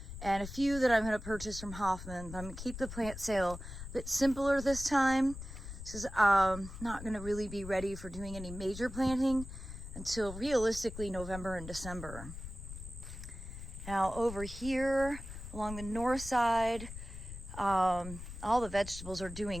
and a few that I'm gonna purchase from Hoffman. I'm gonna keep the plant sale a bit simpler this time, because I'm not gonna really be ready for doing any major planting until realistically November and December. Now over here along the north side, all the vegetables are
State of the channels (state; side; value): noise; left; rumble, 10 dB below the sound